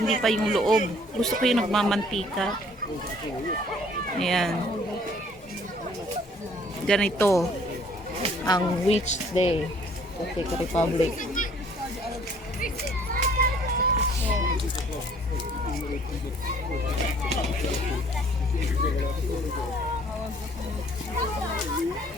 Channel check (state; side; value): normal; both; correlation 0.58